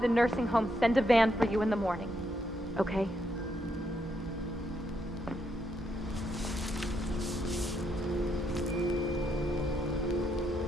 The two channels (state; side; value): normal; both; correlation 0.77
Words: the nursing home send a van for you in the morning, okay?